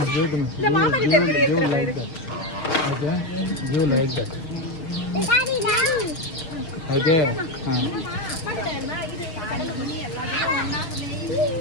Give them. இந்த மாமா கிட்ட இருக்கு Okay. Give like that. Daddy. Okay.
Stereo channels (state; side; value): late; right; 6.4 ms